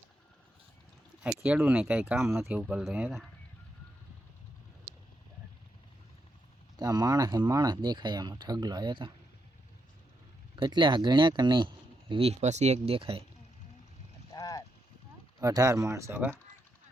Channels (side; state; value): both; normal; correlation 0.82